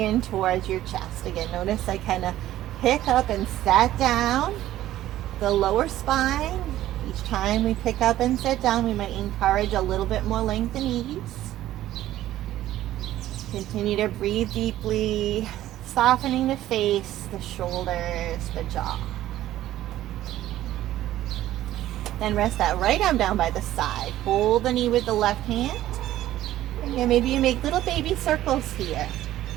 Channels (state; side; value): quieter; left; 13.8 dB